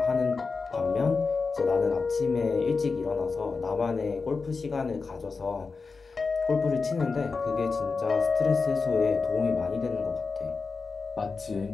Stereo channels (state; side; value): quieter; right; 4.5 dB